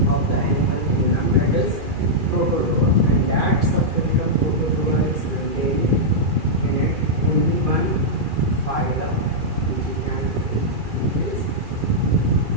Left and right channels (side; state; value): left; late; 2.4 ms